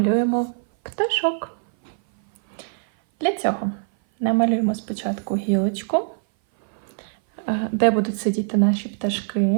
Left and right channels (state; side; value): silent; left; 58 dB below the other